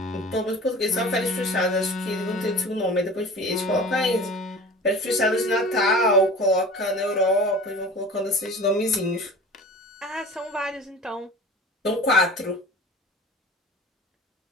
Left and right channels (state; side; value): normal; both; correlation 0.39